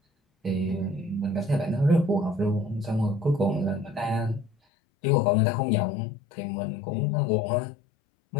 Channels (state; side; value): drops out; right; at 4.5 s